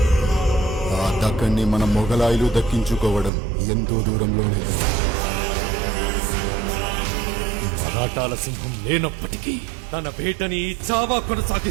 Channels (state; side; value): drops out; left; at 3.3 s